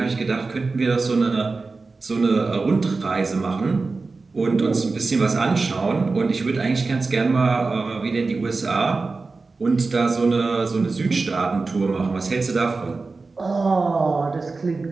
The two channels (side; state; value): left; quieter; 3.9 dB